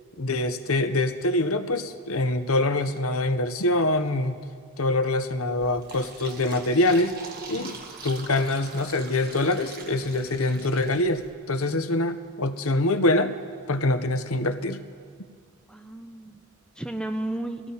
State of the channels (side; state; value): both; normal; correlation 0.14